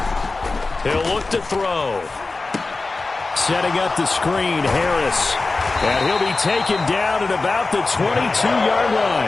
He'll look to throw. Setting up the screen, Harris. And he'll be taken down at about the 22-yard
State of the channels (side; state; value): right; quieter; 3.6 dB